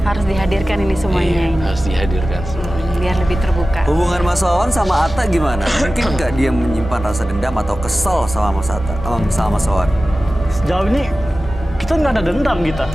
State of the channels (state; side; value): normal; both; correlation 0.96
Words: dihadirkan ini semuanya Iya, ini. harus dihadirkan semuanya. Biar lebih terbuka. Hubungan Mas Wawan sama Atta gimana? Mungkin nggak dia menyimpan rasa dendam atau kesel sama Mas Atta, sama Mas Wawan? Sejauh ini kita nggak ada dendam kita.